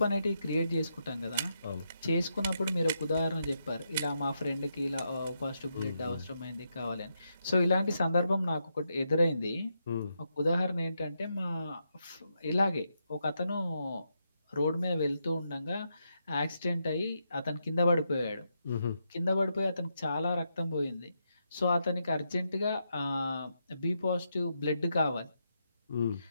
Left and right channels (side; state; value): both; inverted; correlation -0.82